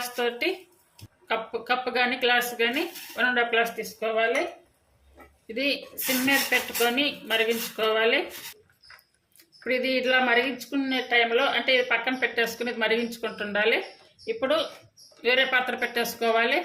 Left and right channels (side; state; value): both; identical; correlation 1.00